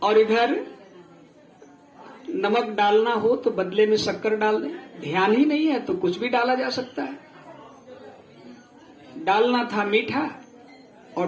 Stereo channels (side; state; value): both; identical; correlation 1.00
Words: और इधर नमक डालना हो तो बदले में शक्कर डाल दें, ध्यान ही नहीं है तो कुछ भी डाला जा सकता है। डालना था मीठा